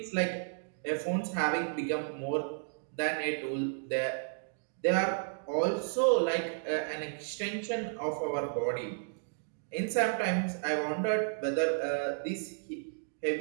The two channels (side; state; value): left; silent; digital silence